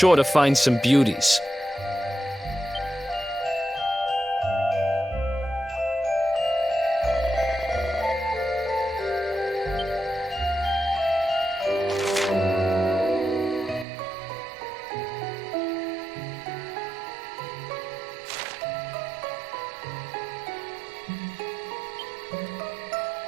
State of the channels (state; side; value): drops out; left; at 13.9 s